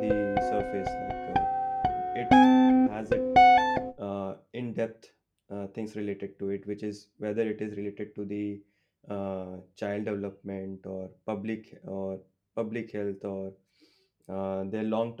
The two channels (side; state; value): both; identical; correlation 1.00